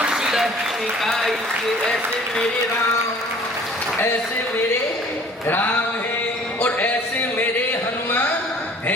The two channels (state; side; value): normal; both; correlation 0.51